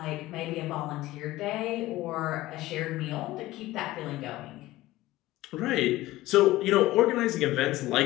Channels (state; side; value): quieter; right; 17.3 dB